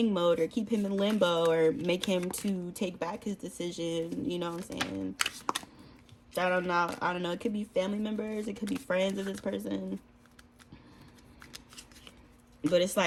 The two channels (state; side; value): identical; both; correlation 1.00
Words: mode, or keep him in limbo, or make him to take back his decision. You know what I'm saying? I don't know. It could be family members. It could be friends of this person. But it's